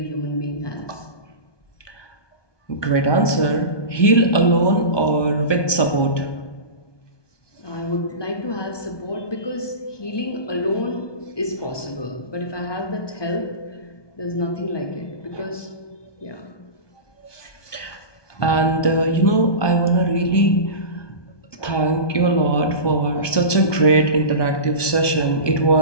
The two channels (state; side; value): late; right; 1.2 ms